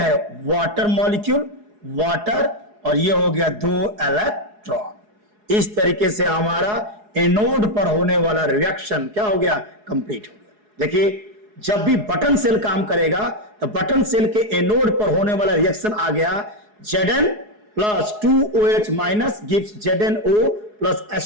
वाटर मॉलिक्यूल, वाटर, और ये हो गया 2 इलेक्ट्रॉन। इस तरीके से हमारा एनोड पर होने वाला रिएक्शन क्या हो गया, कंप्लीट हो गया। देखिए जब भी बटन सेल काम करेगा तो बटन सेल के एनोड पर होने वाला रिएक्शन आ गया Zn plus 2OH minus gives ZnO plus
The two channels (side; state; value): left; late; 4.8 ms